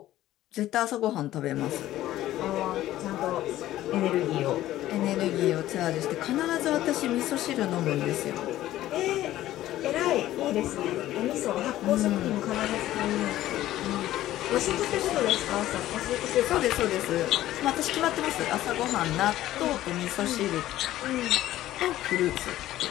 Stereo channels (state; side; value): quieter; right; 14.3 dB